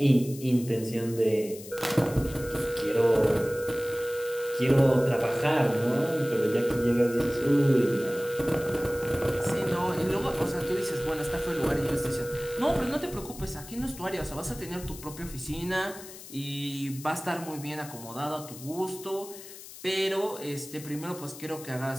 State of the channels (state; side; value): noise; left; hiss, 15 dB below the sound